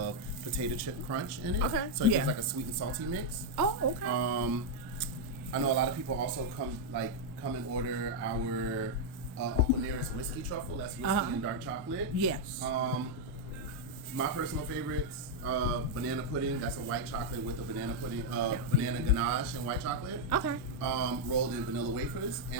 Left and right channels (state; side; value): normal; both; correlation -0.02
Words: potato chip crunch in it. Okay. So it gives like a sweet and salty mix. Oh, okay. I know a lot of people also come and order our Uncle Nearest whiskey truffle. That's whiskey and dark chocolate. Yes. My personal favorites, banana pudding. That's a white chocolate with a banana pudding, banana ganache and white chocolate. Okay. Rolled in vanilla wafers,